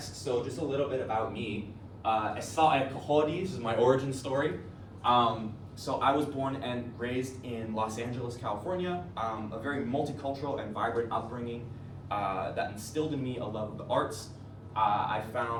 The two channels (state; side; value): identical; both; correlation 1.00